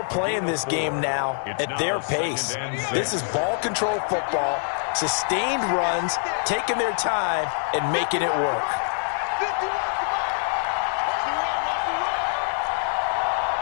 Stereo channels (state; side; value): silent; right; 62 dB below the other